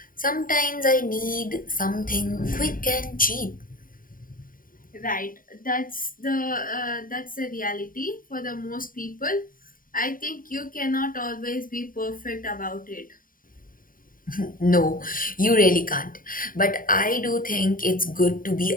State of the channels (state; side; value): late; right; 0.41 ms